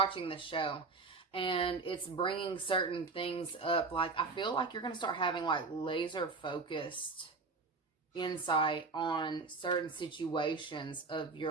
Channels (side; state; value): left; quieter; 4.1 dB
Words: this show, and it's bringing certain things up. Like, I feel like you're going to start having like laser focused insight on certain situations of your